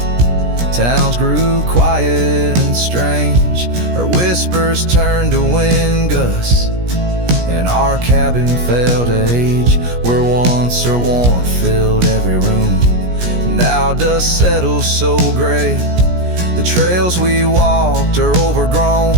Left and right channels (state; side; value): late; left; 17 ms